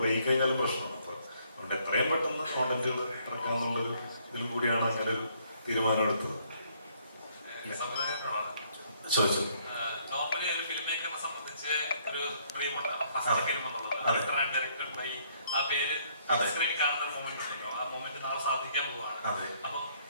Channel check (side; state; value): both; inverted; correlation -0.66